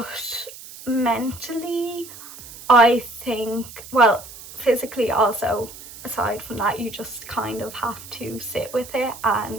mentally I think, well, physically also, aside from that, you just kind of have to sit with it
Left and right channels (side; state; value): right; noise; hiss, 16 dB below the sound